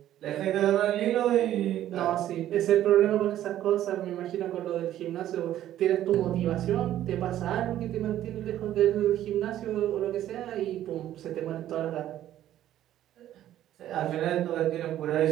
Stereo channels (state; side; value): quieter; left; 12.4 dB